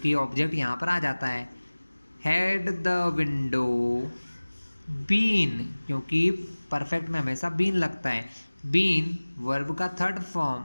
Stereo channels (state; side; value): inverted; both; correlation -1.00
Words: ऑब्जेक्ट यहाँ पर आ जाता है। हैड द विंडो बीन, क्योंकि परफेक्ट में हमेशा बीन लगता है। बीन वर्ब का third form,